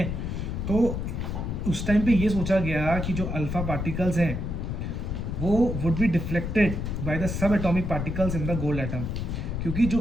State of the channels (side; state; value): left; noise; rumble, 3 dB below the sound